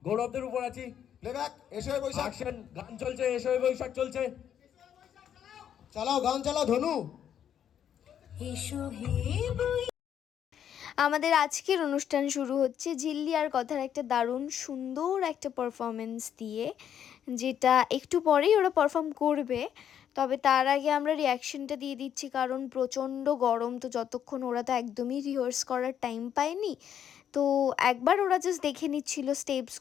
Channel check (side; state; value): right; quieter; 9.4 dB